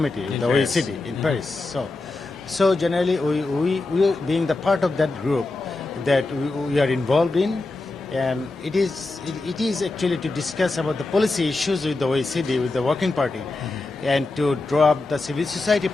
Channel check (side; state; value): right; quieter; 3.2 dB